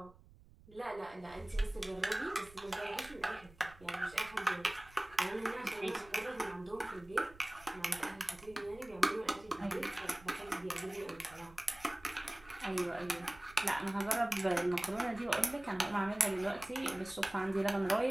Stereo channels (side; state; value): right; noise; rumble, 23 dB below the sound